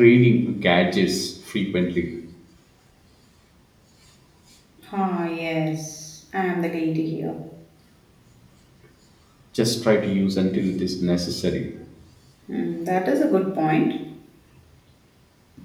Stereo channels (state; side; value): identical; both; correlation 1.00